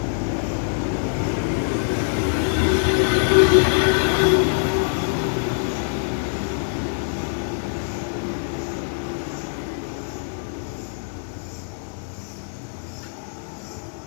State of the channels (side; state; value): right; silent; digital silence